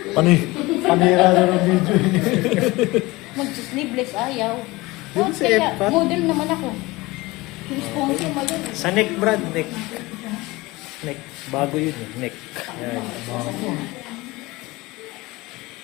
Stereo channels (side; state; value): right; quieter; 21.4 dB